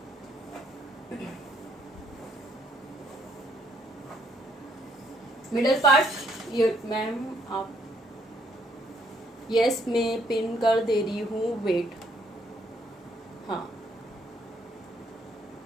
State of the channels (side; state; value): both; normal; correlation 0.69